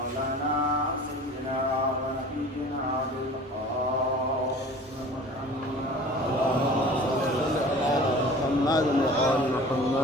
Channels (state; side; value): normal; both; correlation 0.42